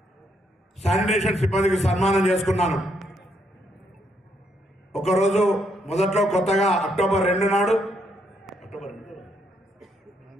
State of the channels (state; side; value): normal; both; correlation 0.75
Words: శానిటేషన్ సిబ్బందికి సన్మానం చేసుకున్నాను. ఒకరోజు మొదట్లో కొత్తగా అక్టోబర్ 2 నాడు